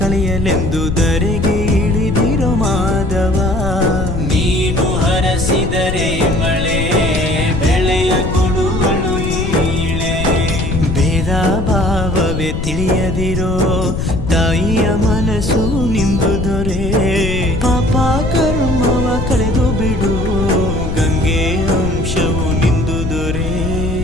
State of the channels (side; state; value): left; noise; rumble, 3 dB below the sound